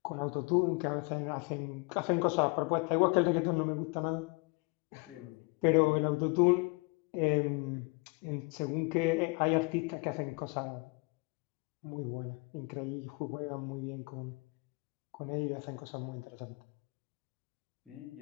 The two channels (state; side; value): quieter; right; 30.1 dB